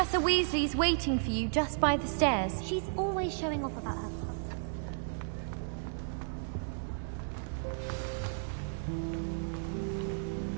Weasley's waiting for you just by the stairs. She's always showing off about her.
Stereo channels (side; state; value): left; silent; digital silence